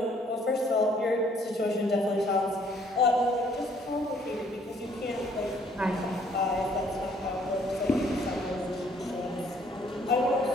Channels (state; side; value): normal; both; correlation 0.62